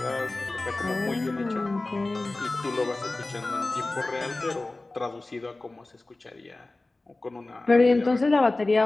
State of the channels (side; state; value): right; quieter; 3.1 dB